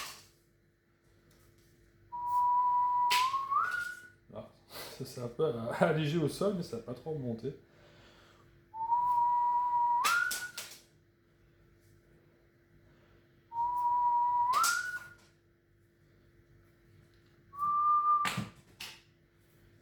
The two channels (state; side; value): identical; both; correlation 1.00